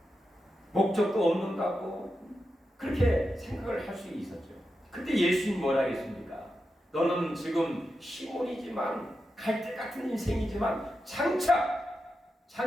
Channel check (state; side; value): normal; both; correlation 0.89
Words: 목적도 없는 것 같고 그렇게 생각을 할 수 있었죠. 그때 예수님 뭐라 했습니까? 너는 지금 시몬이지만 갈대 같은 인생이지만 장차